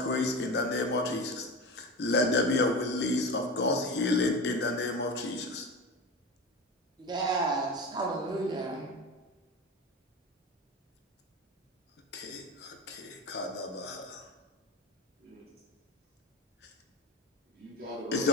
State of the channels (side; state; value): both; normal; correlation 0.27